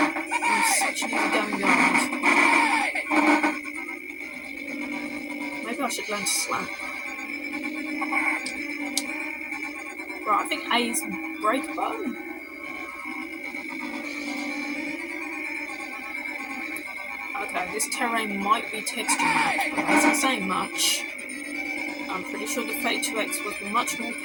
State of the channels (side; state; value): both; identical; correlation 1.00